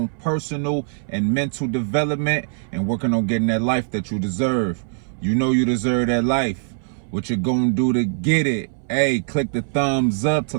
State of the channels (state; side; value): silent; left; 61 dB below the other